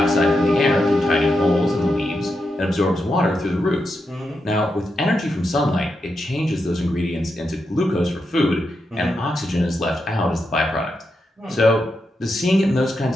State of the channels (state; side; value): normal; both; correlation 0.85